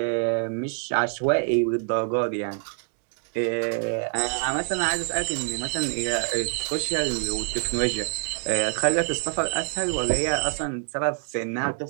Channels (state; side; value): silent; left; 61 dB below the other